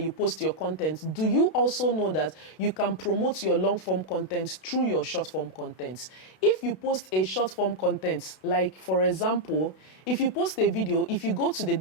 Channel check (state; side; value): late; right; 32 ms